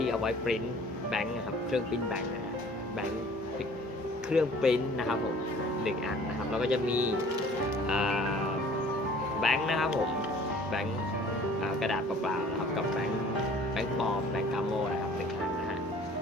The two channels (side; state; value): both; normal; correlation 0.51